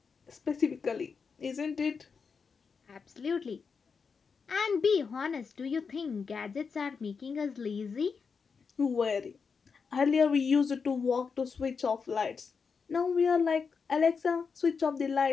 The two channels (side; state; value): right; quieter; 5.5 dB